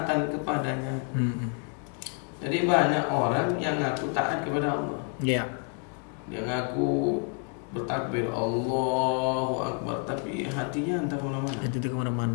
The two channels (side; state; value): right; quieter; 38.1 dB